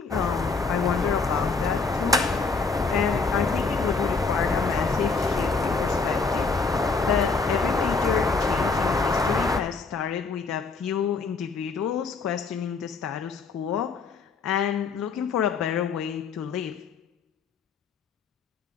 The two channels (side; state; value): right; quieter; 4.5 dB